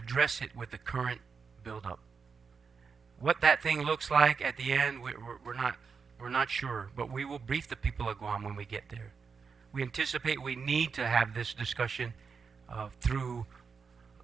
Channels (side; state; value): left; quieter; 5.6 dB